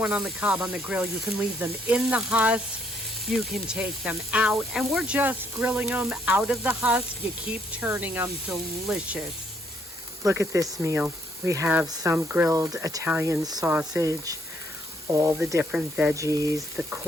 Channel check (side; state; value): both; normal; correlation 0.69